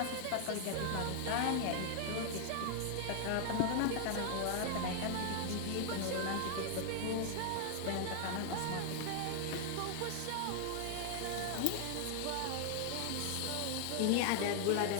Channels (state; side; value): different; both; correlation 0.00